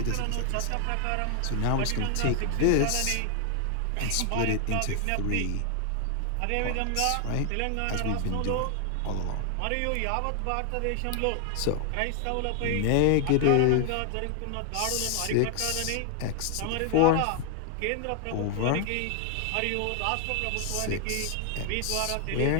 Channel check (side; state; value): both; different; correlation 0.00